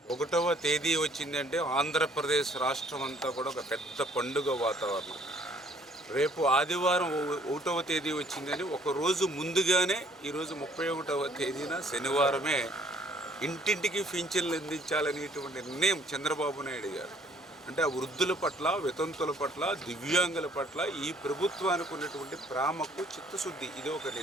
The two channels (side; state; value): both; normal; correlation 0.61